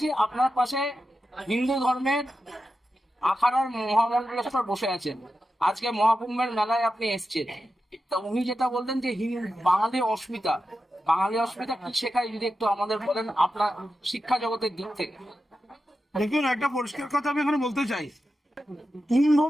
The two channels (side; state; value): both; normal; correlation 0.90